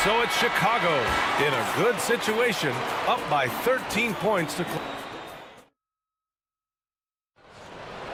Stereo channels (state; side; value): identical; both; correlation 1.00